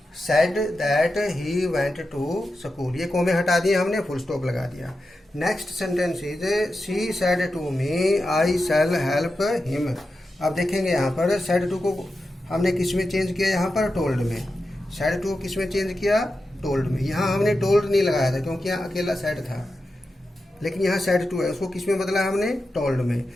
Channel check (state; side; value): normal; both; correlation 0.90